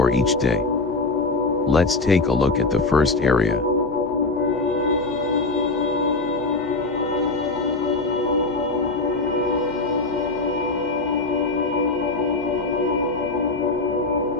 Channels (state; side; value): quieter; right; 3.4 dB